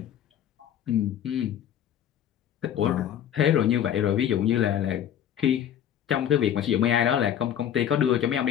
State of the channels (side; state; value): right; quieter; 10.0 dB